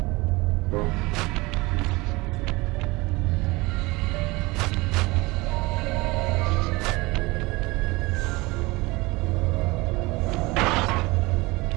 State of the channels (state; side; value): quieter; left; 23.0 dB